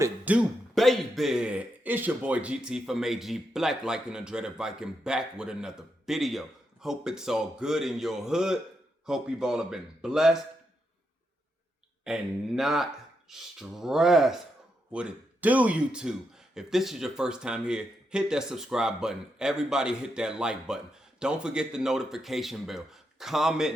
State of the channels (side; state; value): both; normal; correlation 0.83